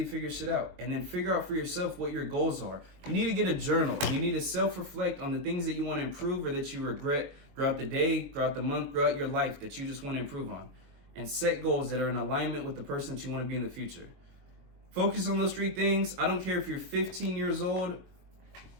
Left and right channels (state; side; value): late; left; 22 ms